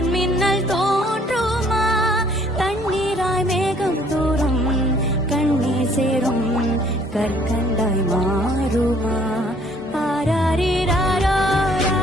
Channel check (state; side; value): normal; both; correlation 0.60